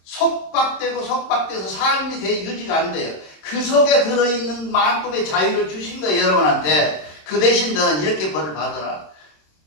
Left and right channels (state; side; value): late; right; 26 ms